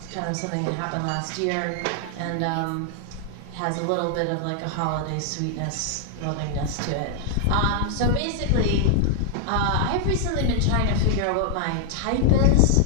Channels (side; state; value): both; different; correlation 0.00